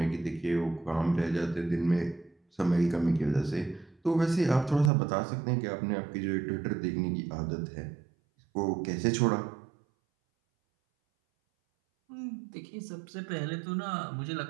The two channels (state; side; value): drops out; left; at 4.9 s